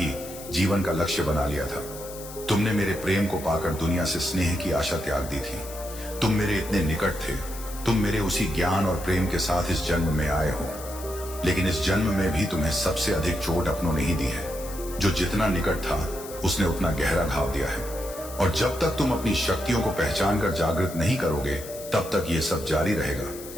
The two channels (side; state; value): left; noise; hiss, 14 dB below the sound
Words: जीवन का लक्ष्य बना लिया था। तुमने मेरे प्रेम को पाकर दुनिया से स्नेह की आशा त्याग दी थी। तुम मेरे इतने निकट थे। तुम मेरे उसी ज्ञान और प्रेम के साथ इस जन्म में आए हो, लेकिन इस जन्म में भी तुम्हें सबसे अधिक चोट अपनों ने ही दी है। जो जितना निकट था उसने उतना गहरा घाव दिया है। और जब तक तुम अपनी शक्तियों को पहचान कर जागृत नहीं करोगे, तब तक ये सब जारी रहेगा।